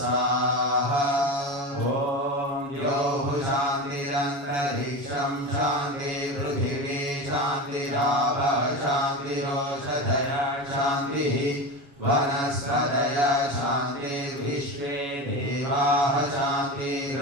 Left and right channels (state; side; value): late; left; 7.1 ms